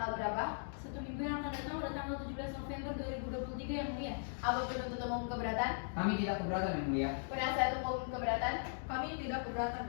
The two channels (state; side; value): silent; right; digital silence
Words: berapa? 1 minggu yang akan datang pada tanggal 17 November 2023 yang mulia. Apa penuntut umum keberatan? Kami tidak keberatan yang mulia. Penasihat hukum keberatan? Kami tidak keberatan